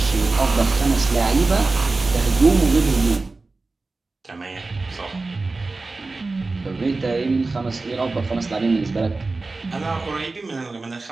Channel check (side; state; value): left; quieter; 3.6 dB